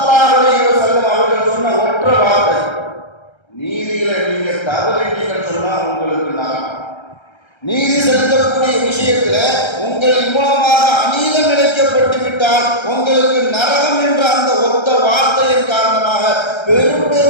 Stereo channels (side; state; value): right; late; 1.3 ms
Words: அலைஹி வஸல்லம் அவர்கள் சொன்ன ஒற்றை வார்த்தை, நீதியில நீங்க தவறிட்டீங்கன்னு சொன்னா உங்களுக்கு நரகம். நீதி செலுத்தக்கூடிய விஷயத்துல உங்களின் மூலமாக அநீதம் இழைக்கப்பட்டு விட்டால் உங்களுக்கு நரகம் என்ற அந்த ஒத்த வார்த்தையின் காரணமாக பெரும்